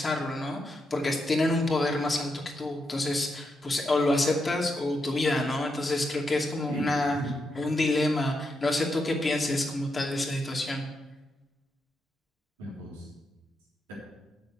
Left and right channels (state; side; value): normal; both; correlation 0.83